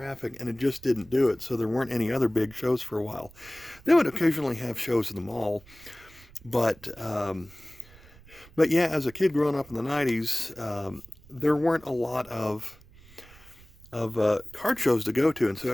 and it just didn't do it. So there weren't any other big shows for a while. They would occasionally have shows in the mall, but but yeah, as a kid growing up in the '90s, there weren't a lot of card shows to go to, and so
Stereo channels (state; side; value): noise; right; rumble, 24 dB below the sound